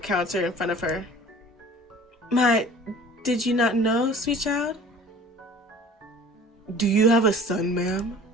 in front of her. Did you not know, sweet child? Do you have a son, ma'am?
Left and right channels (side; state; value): both; normal; correlation 0.46